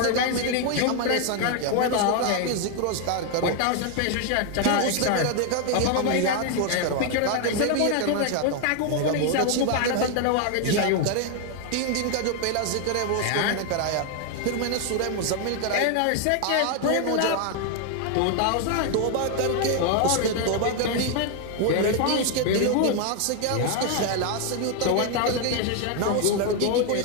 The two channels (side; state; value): both; different; correlation 0.01